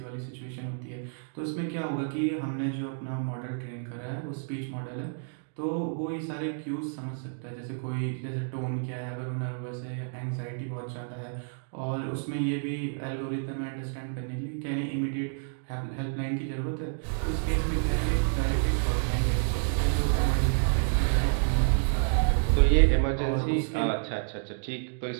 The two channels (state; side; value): silent; left; digital silence